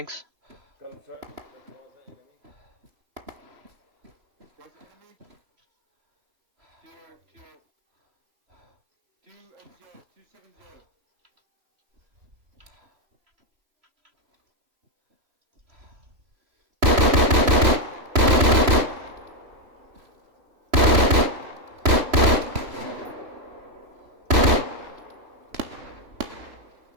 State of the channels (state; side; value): late; left; 3.0 ms